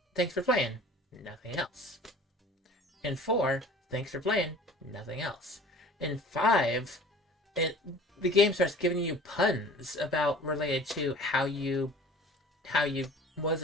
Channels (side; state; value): both; normal; correlation 0.45